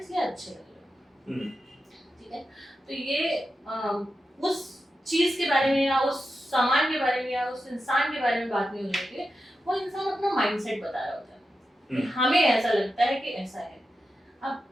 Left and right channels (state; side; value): normal; both; correlation 0.90